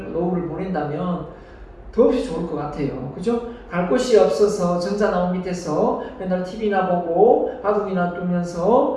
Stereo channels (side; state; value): both; identical; correlation 1.00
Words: 노후를 보낸다면 더없이 좋을 것 같아요. 그죠? 갈 곳이 없어서 정자나무 밑에서 맨날 TV나 보고 바둑이나